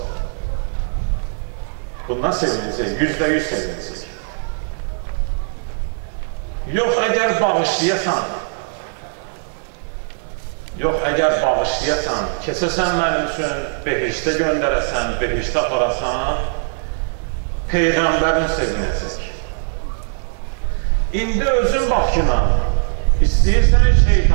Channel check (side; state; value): left; silent; digital silence